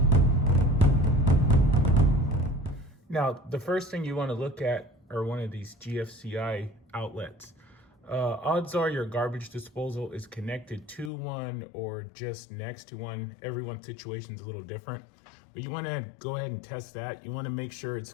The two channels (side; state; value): right; drops out; at 11.1 s